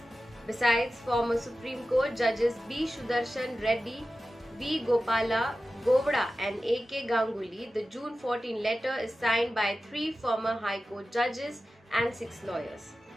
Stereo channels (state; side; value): normal; both; correlation 0.94